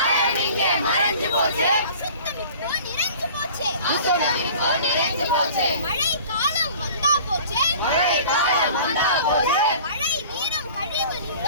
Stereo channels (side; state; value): both; inverted; correlation -0.45